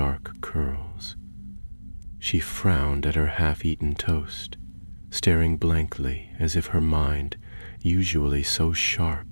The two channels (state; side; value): inverted; both; correlation -1.00